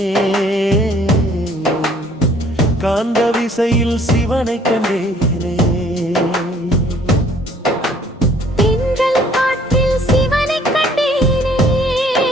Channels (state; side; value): normal; both; correlation 0.59